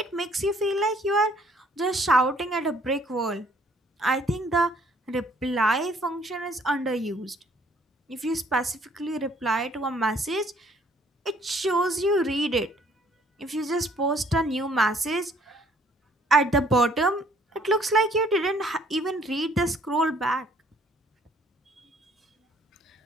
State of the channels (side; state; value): both; normal; correlation 0.61